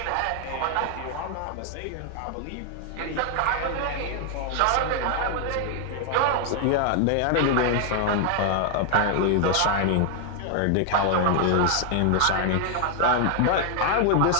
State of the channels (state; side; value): different; both; correlation 0.00